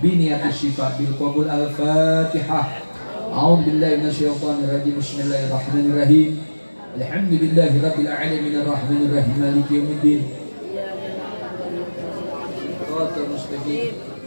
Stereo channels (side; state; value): both; inverted; correlation -1.00